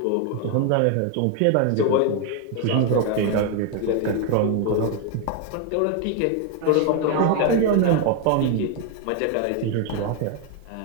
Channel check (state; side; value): different; both; correlation 0.01